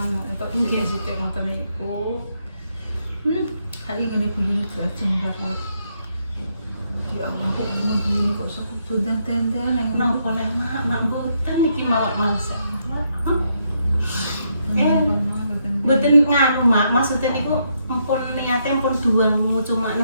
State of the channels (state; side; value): inverted; both; correlation -0.77